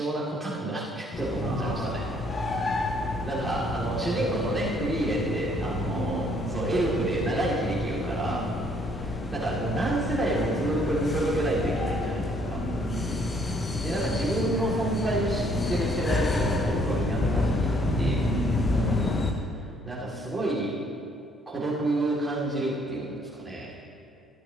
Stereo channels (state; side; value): normal; both; correlation 0.65